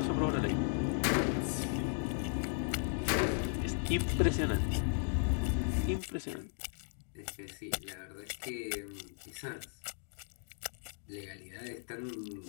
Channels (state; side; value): silent; right; 54 dB below the other